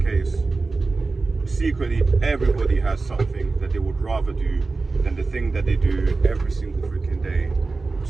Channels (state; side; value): quieter; left; 3.8 dB